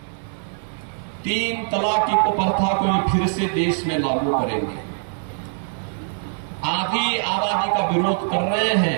3 तलाक की कुप्रथा को फिर से देश में लागू करेंगे। आधी आबादी का विरोध कर रहे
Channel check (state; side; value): silent; left; digital silence